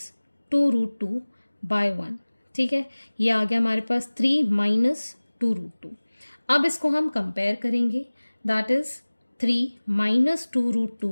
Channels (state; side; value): inverted; both; correlation -1.00